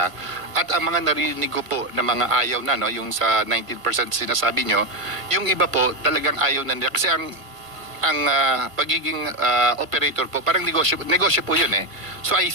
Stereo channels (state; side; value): late; left; 1.5 ms